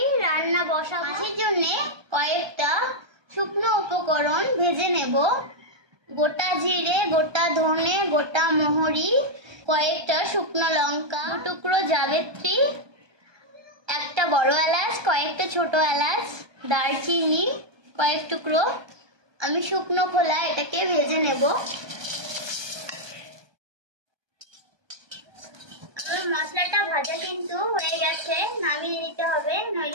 রান্না বসাবো। মাছের জন্য কয়েকটা শুকনো উপকরণ ভেজে নেব। গোটা জিরে, গোটা ধনে, গোটা মোহরি, কয়েকটা শুকনো লঙ্কা, টুকরো জাবিত্রী, একটা বড় এলাচ, কয়েকটা ছোট এলাচ, দারচিনি কয়েক টুকরো। আমি শুকনো খোলা এটাকে ভেজে নেব। মশলাটা ভাজা কিন্তু হয়ে গেছে, নামিয়ে নিতে হবে,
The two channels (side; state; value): left; late; 1.2 ms